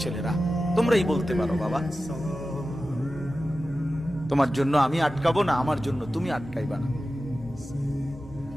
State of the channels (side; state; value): both; normal; correlation 0.94